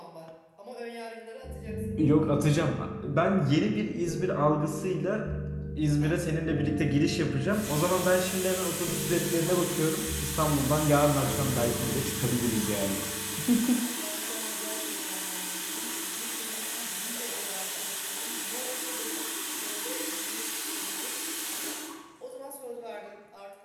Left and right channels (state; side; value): identical; both; correlation 1.00